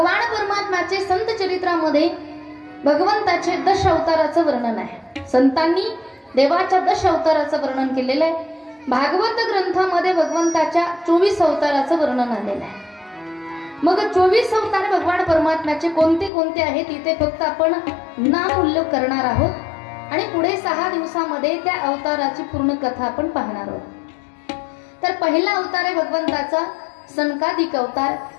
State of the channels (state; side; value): drops out; right; at 16.3 s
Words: परमात्म्याचे संत चरित्रामध्ये भगवंताचे 10 अवताराचं वर्णन आहे. संतांनी देवाच्या 10 अवताराचं वर्णन केलेलं आहे. भागवत ग्रंथामध्ये भगवंताच्या 24 अवताराचं वर्णन आलेलं आहे. मग 24 अवतार भगवान परमात्म्याचे कोणते कोणते आहेत इथे फक्त आपण नाम उल्लेख करणार आहोत आणि पुढे 6 दिवसामध्ये त्या अवताराची पूर्ण कथा आपण पाहणार आहोत. तर पहिला अवतार आहे भगवंताचा सनकादिक अवतार,